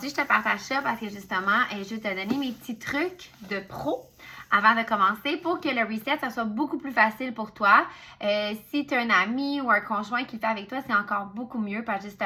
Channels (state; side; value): identical; both; correlation 1.00